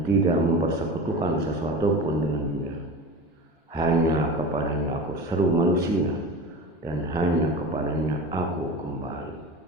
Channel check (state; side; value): normal; both; correlation 0.31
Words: tidak mempersekutukan sesuatu pun dengan Dia. Hanya kepadanya aku seru manusia dan hanya kepadanya aku kembali.